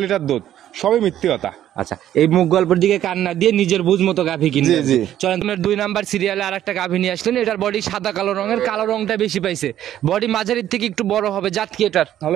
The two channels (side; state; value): left; quieter; 11.7 dB